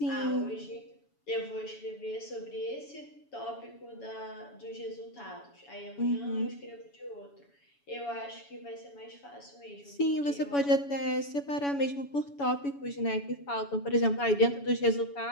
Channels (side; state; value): right; late; 7.1 ms